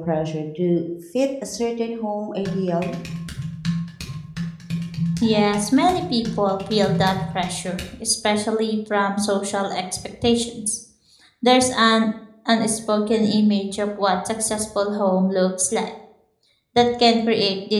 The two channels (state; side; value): identical; both; correlation 1.00